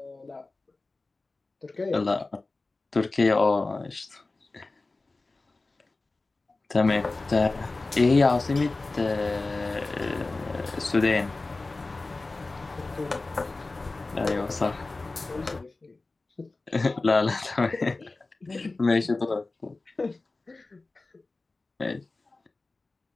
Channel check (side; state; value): right; quieter; 3.4 dB